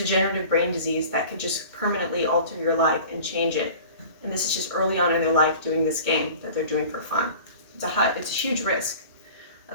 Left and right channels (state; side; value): inverted; both; correlation -0.42